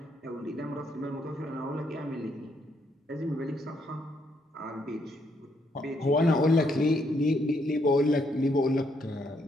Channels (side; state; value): both; normal; correlation 0.74